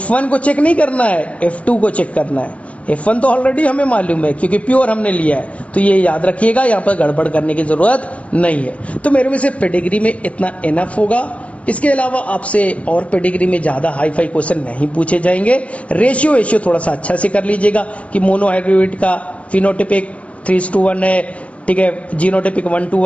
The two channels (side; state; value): right; late; 0.064 ms